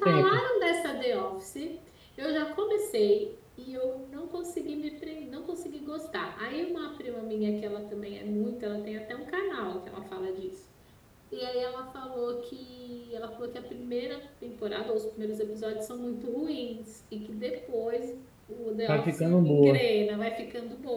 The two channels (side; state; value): both; identical; correlation 1.00